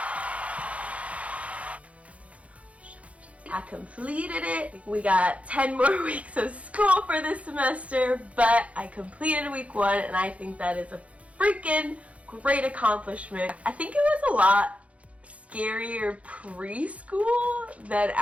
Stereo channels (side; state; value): left; late; 0.064 ms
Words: I completed it. We got 10 more weeks of school for this semester, but I completed week 1 and I think that is a freaking great accomplishment. I think it was a lot scarier preschool than